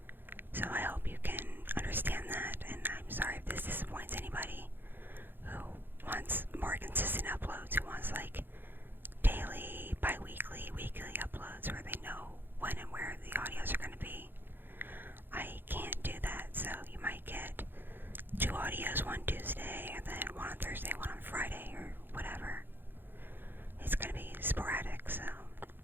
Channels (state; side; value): late; left; 0.097 ms